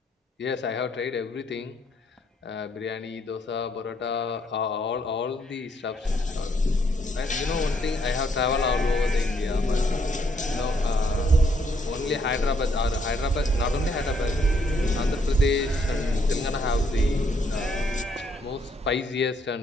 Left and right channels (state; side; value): normal; both; correlation 0.71